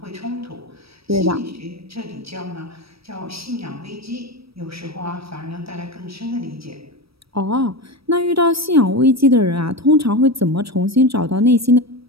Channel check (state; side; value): late; left; 0.76 ms